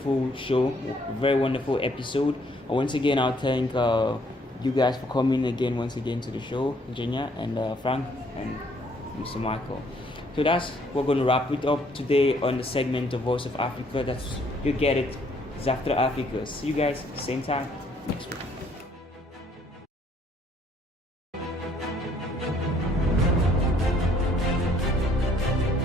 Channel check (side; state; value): both; normal; correlation 0.65